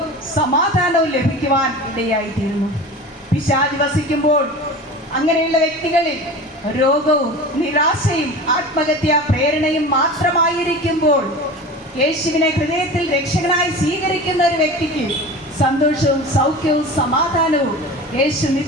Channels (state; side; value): normal; both; correlation 0.34